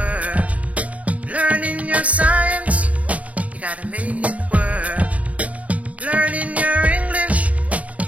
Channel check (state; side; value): late; left; 0.068 ms